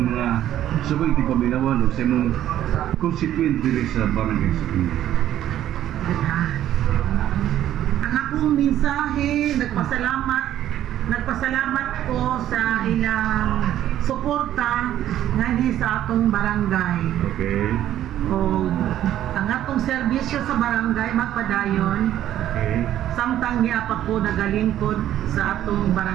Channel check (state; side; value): quieter; left; 12.0 dB